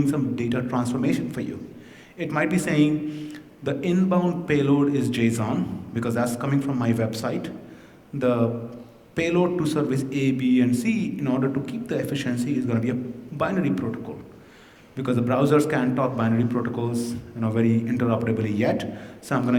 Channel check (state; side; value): identical; both; correlation 1.00